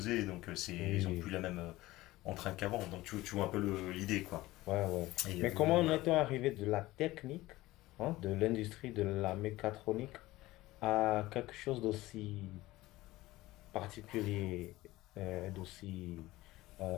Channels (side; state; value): right; quieter; 18.1 dB